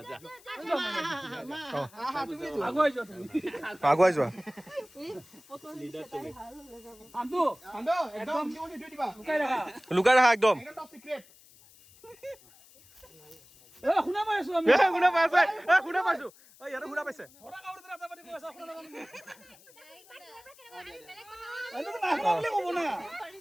আগুৱাই যোৱা লুকাই ৰাখা একদম শুনা পাইছো ইয়াতো শুনা পাইছে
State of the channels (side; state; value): left; noise; hiss, 25 dB below the sound